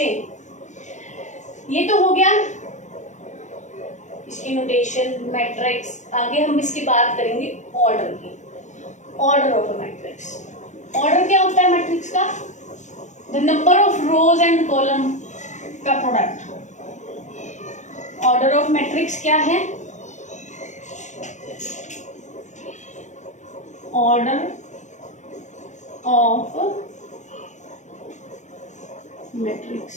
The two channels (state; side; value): late; right; 0.35 ms